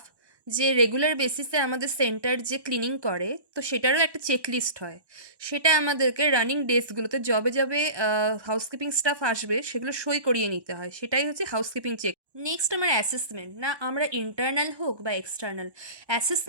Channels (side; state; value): left; late; 1.1 ms